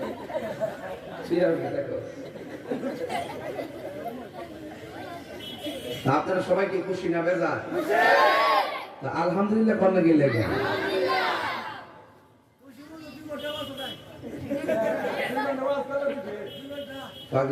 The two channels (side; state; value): both; identical; correlation 1.00